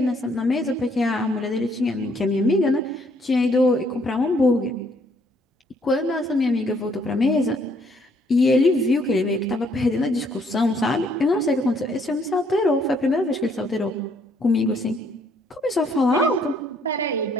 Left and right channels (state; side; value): normal; both; correlation 0.66